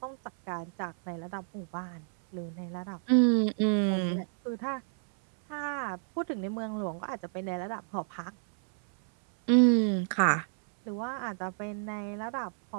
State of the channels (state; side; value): silent; left; 58 dB below the other